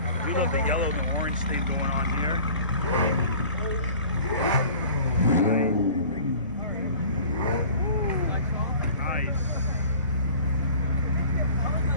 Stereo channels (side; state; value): both; inverted; correlation -0.45